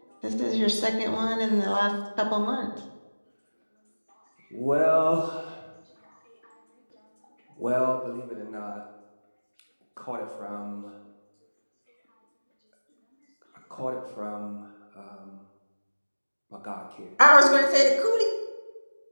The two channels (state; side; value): inverted; both; correlation -1.00